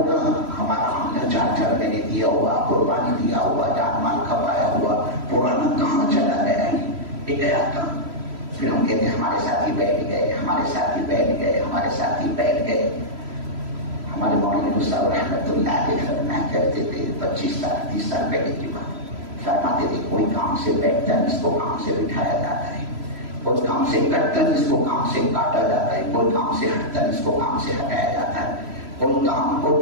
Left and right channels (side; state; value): left; late; 3.0 ms